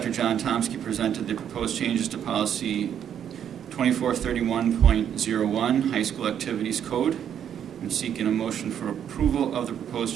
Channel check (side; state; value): left; quieter; 9.2 dB